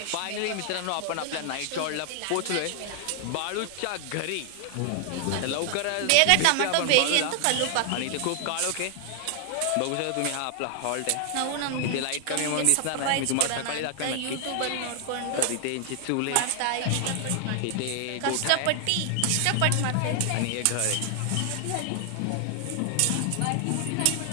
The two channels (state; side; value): different; both; correlation 0.00